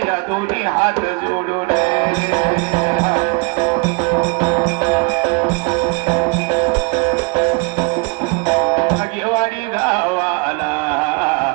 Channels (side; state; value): left; quieter; 30.4 dB